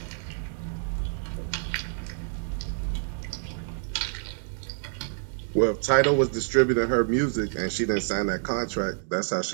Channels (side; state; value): left; silent; digital silence